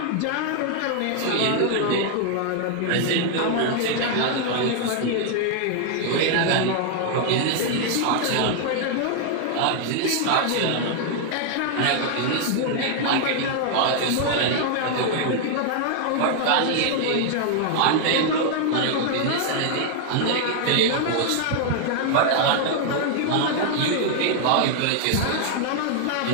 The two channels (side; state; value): both; different; correlation 0.00